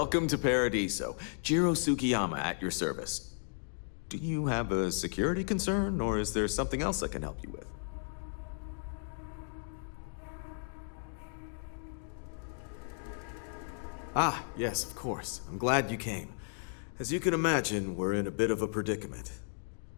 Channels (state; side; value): silent; right; digital silence